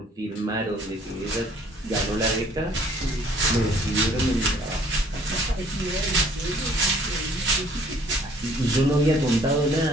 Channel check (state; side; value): normal; both; correlation 0.58